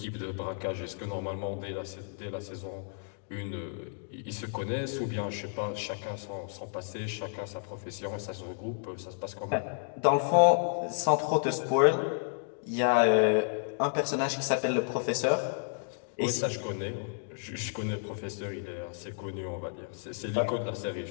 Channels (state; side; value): silent; right; digital silence